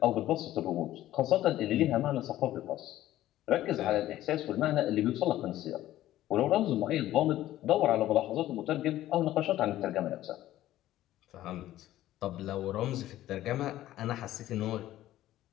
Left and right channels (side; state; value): right; quieter; 14.1 dB